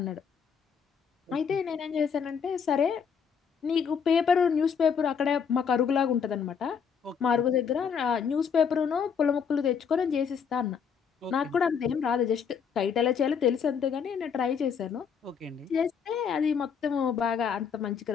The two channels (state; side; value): quieter; right; 6.8 dB